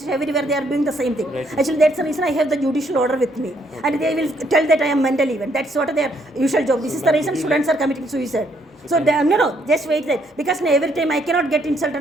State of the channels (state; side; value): normal; both; correlation 0.70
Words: everywhere they are doing the same thing. Actually, that's the reason I have the judicial order with me. And they will tell that I am mentally even. That's what their usual job. This is the reason students are committing suicide. So, no, just wait there. Because every time I cannot get